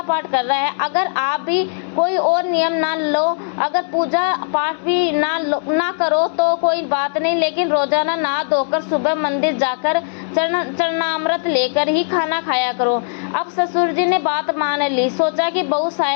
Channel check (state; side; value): silent; right; digital silence